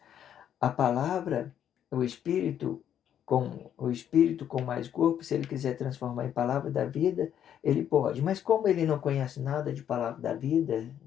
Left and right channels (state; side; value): quieter; right; 9.7 dB